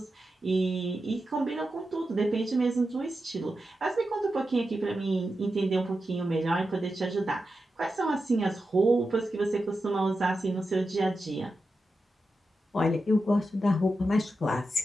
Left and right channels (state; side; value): normal; both; correlation 0.90